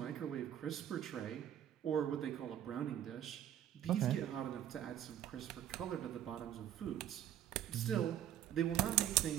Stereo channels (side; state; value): left; quieter; 11.1 dB